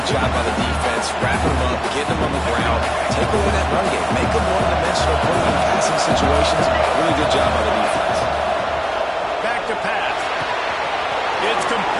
Job by the defense, wrapping them up, getting them on the ground, take away that run game, make them one-dimensional, put them in passing situations. Really good job by the defense. Back to pass. It's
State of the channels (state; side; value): identical; both; correlation 1.00